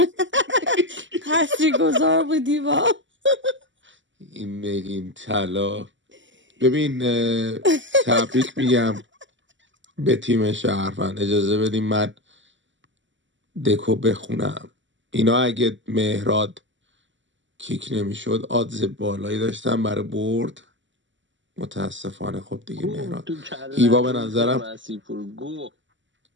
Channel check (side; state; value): left; late; 0.54 ms